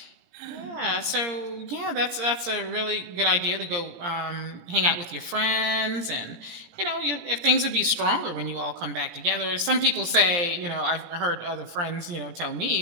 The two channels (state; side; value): late; left; 18 ms